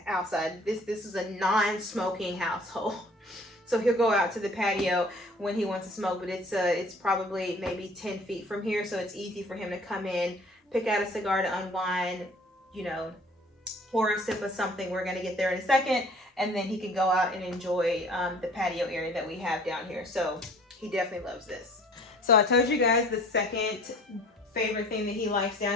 outside. This is a non-smoking household. So he'll go out to the patio when he wants to smoke, but it's probably maybe 10 feet from here, so it's easy for him to come in, pick out a cigar to unwind, you know, pour a sip of something. We're gonna get there in a second, and then he can go out and enjoy the patio area that we have down here. So he definitely loves this. So I told you guys the second favorite thing that he likes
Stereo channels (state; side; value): normal; both; correlation 0.51